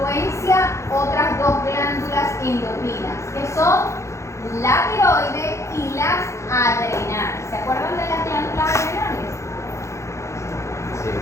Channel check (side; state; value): right; late; 0.14 ms